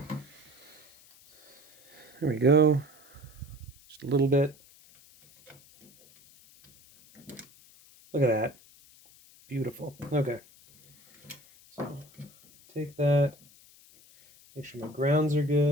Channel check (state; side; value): noise; left; hiss, 26 dB below the sound